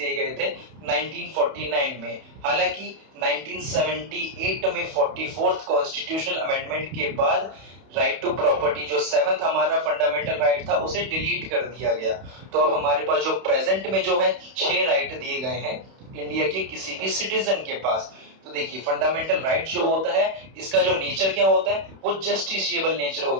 गए थे 1949 में। हालांकि 1978 में 44th कॉन्स्टिट्यूशनल अमेंडमेंट के बाद राइट टू प्रॉपर्टी, जो 7th हमारा फंडामेंटल राइट था, उसे डिलीट कर दिया गया। तो अब हमारे पास जो प्रेजेंट में जो है 6 राइट दिए गए हैं इंडिया के किसी भी सिटीजन के पास। तो देखिए फंडामेंटल राइट जो होता है, इसका जो नेचर क्या होता है, वो जस्टिसिएबल नेचर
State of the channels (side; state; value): left; late; 31 ms